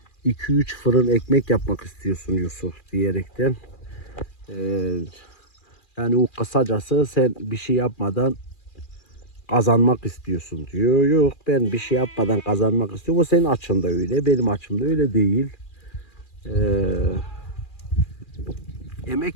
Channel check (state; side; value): late; right; 2.4 ms